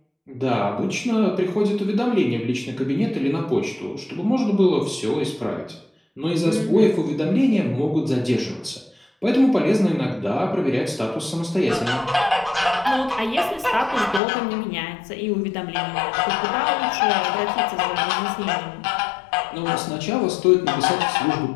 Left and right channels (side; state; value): right; drops out; at 14.2 s